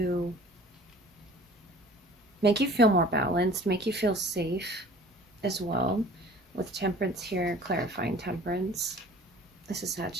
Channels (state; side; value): normal; both; correlation 0.47